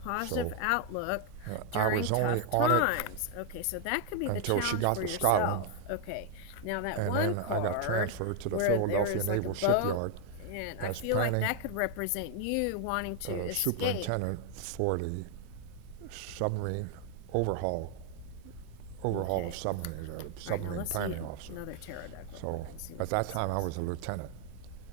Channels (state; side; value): different; both; correlation 0.00